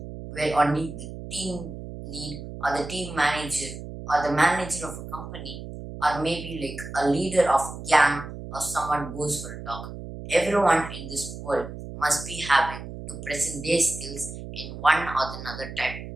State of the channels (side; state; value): right; noise; hum, 10 dB below the sound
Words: where only the team lead or the team manager or the manager of a company or maybe like a leader of a gang or someone goes for a talk. Everyone in this world must be having to present their skills in one or another type.